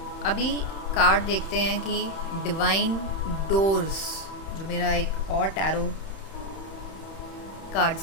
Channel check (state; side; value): late; right; 31 ms